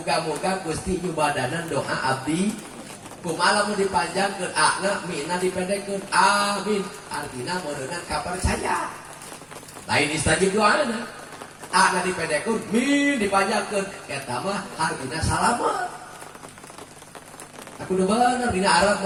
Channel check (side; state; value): both; identical; correlation 1.00